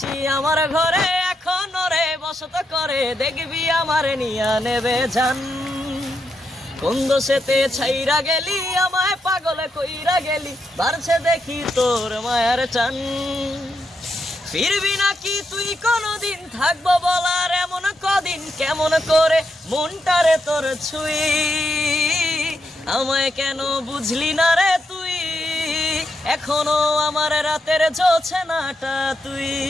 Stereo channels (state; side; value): normal; both; correlation 0.83